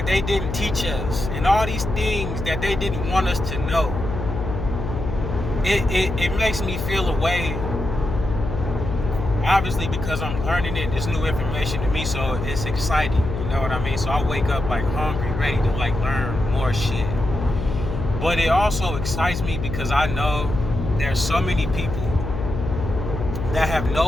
they didn't teach us and all these things that they didn't want us to know, it makes me feel a way. Obviously, because I'm learning it, it's new information to me, so it's exciting. You know what I mean? So I wake up like hungry, ready to like learn more shit. But it also excites me because I know there's so many people that have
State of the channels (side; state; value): left; noise; hum, 5 dB below the sound